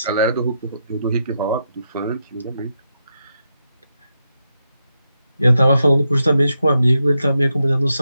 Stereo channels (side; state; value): both; inverted; correlation -0.84